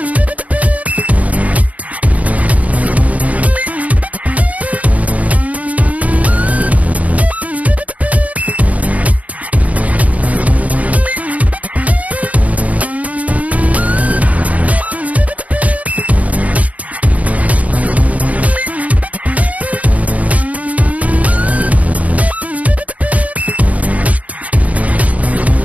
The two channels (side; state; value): left; late; 0.070 ms